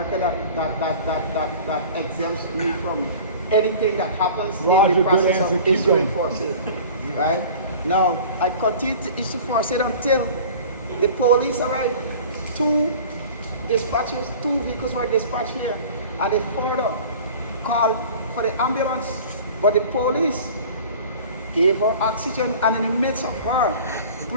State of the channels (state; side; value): inverted; both; correlation -0.42